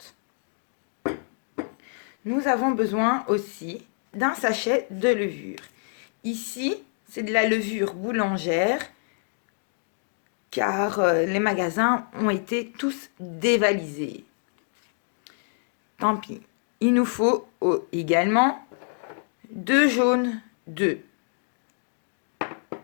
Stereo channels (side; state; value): right; silent; 60 dB below the other